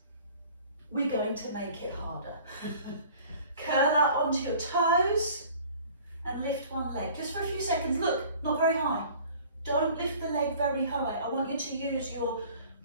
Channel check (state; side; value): inverted; both; correlation -0.49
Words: we're going to make it harder. Curl up onto your toes and lift one leg. Just for a few seconds, look, not very high. Don't lift the leg very high. I want you to use your